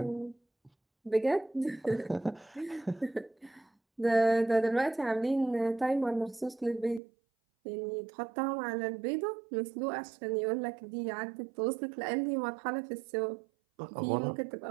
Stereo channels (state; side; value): drops out; left; at 7.0 s